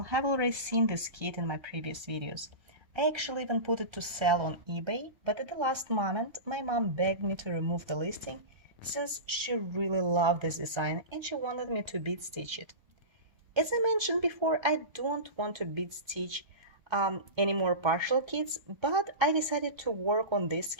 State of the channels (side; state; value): left; late; 1.3 ms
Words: have already seen this kit in my previous videos. I actually even put it to sell on eBay, but at the last moment my mom begged me to remove the listing since she really loved this design and she wanted me to bead stitch it. As I mentioned before, I don't want to bead stitch any more partial kits, but I decided to work on this